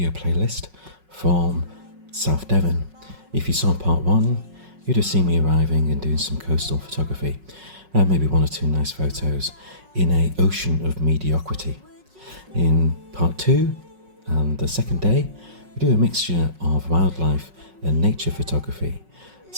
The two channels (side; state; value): left; late; 5.4 ms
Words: playlist from South Devon. If you saw part 1, you'd have seen me arriving and doing some coastal photography, and maybe 1 or 2 nice photos in an ocean of mediocrity. In part 2, and the second day, we do a mixture of wildlife and nature photography,